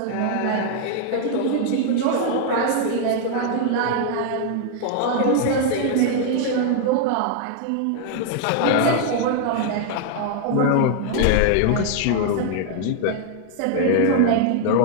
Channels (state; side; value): different; both; correlation 0.00